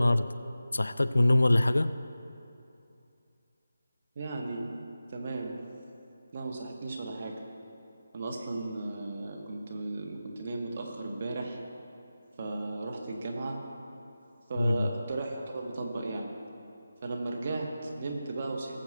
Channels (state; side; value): inverted; both; correlation -0.94